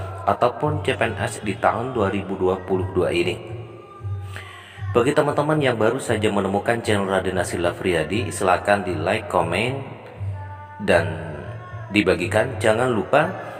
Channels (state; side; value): identical; both; correlation 1.00